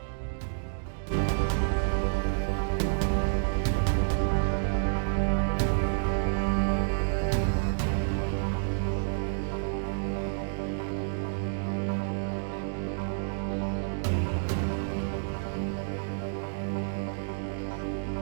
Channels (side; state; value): left; silent; digital silence